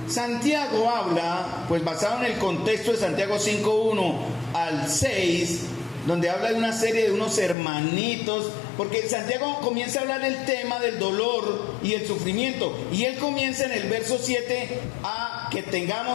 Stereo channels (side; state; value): right; drops out; at 7.6 s